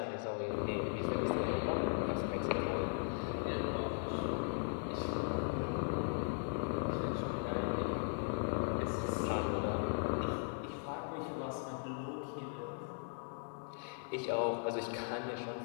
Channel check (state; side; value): silent; right; 52 dB below the other